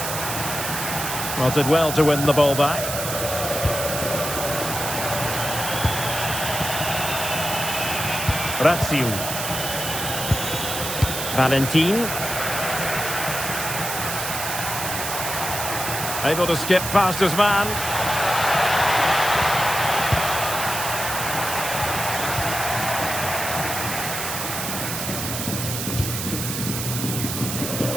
Well, did well to win the ball back. Razziu. Valentin. Able to skip past his man.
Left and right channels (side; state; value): right; noise; hiss, 4 dB below the sound